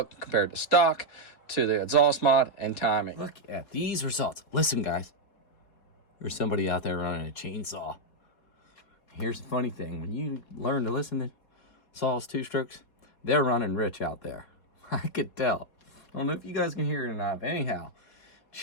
compared to stock, to the exhaust mod, and timing. Look at these results. Listen, guys. There's somebody out there running a chainsaw. Here's the funny thing. When you learn to listen to saws, two-strokes, they're running rich out there. I could tell. I don't know if you guys can hear it or not, but anyhow,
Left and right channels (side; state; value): right; late; 4.2 ms